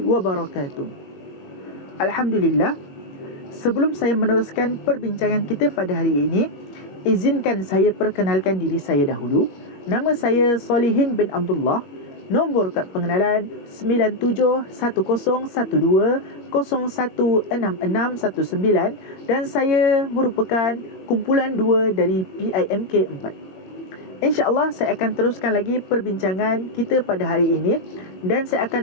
wabarakatuh. Alhamdulillah. Sebelum saya meneruskan perbincangan kita pada hari ini, izinkan saya perkenalkan diri saya dahulu. Nama saya Solihin bin Abdullah. Nombor kad pengenalan 9712016619 dan saya merupakan kumpulan 2 dari PIMK 4. InsyaAllah saya akan teruskan lagi perbincangan kita pada hari ini dan saya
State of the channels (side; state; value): right; late; 21 ms